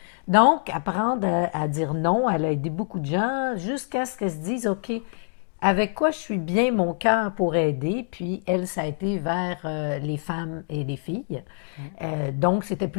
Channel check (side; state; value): right; silent; digital silence